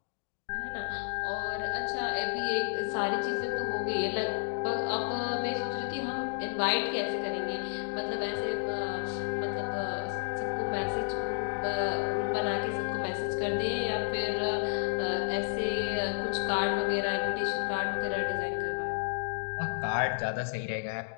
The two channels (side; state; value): right; silent; digital silence